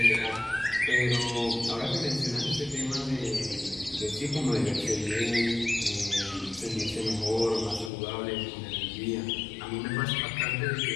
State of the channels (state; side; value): drops out; right; at 7.9 s